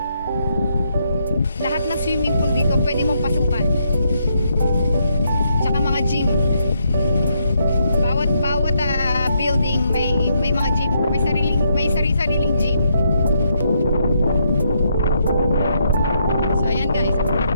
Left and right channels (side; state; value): both; inverted; correlation -0.76